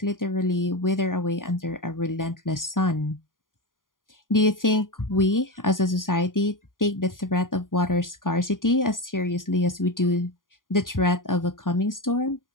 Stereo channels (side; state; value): right; late; 0.90 ms